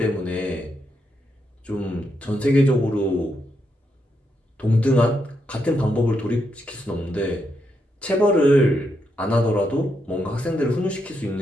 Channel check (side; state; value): both; normal; correlation 0.81